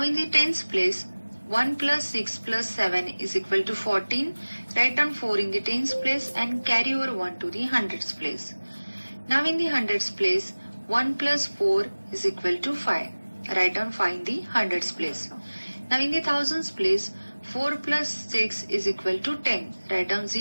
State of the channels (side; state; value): both; inverted; correlation -1.00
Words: in the tens place, 1 plus 6 plus 7 is equal to 14. Write down 4 in the tens place and carry over 1 to the hundreds place. Now in the hundreds place, 1 plus 4 is equal to 5. Write down 5 in the hundreds place. Now in the thousands place, 4 plus 6 is equal to 10. Write down